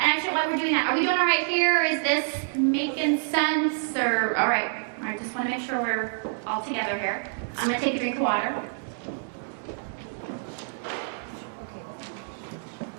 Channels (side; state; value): left; silent; digital silence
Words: And actually, while we're doing that, are we doing all right here? Is this making sense? Or all right, just want to make sure we're all together here. I'm going to take a drink of water.